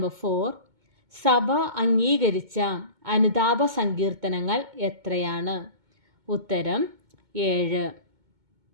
4. സഭ അംഗീകരിച്ച അനുതാപ സങ്കീർത്തനങ്ങൾ എത്രയാണ്? ഉത്തരം 7.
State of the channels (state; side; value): late; left; 2.2 ms